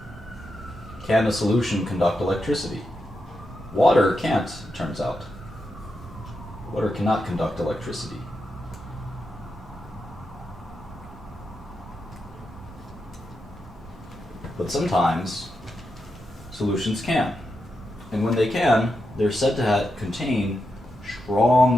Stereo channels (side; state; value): both; normal; correlation 0.86